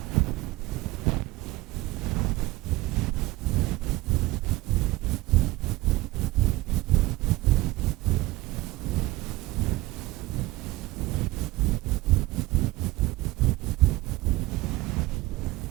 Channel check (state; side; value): quieter; left; 19.1 dB